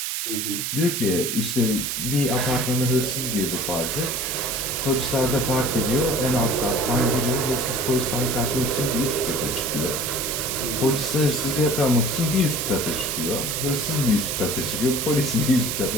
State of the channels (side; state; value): right; noise; hiss, 2 dB below the sound